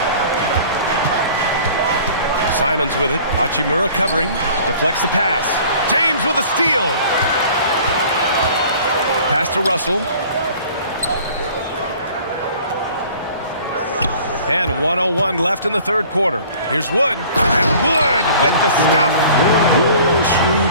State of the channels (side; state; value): both; inverted; correlation -0.49